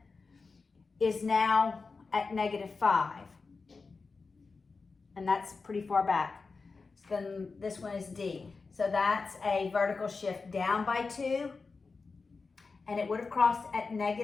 is now at -5. And that's pretty far back. So then this one is D. So that's a vertical shift down by 2. And it would have crossed at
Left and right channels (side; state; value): right; quieter; 4.4 dB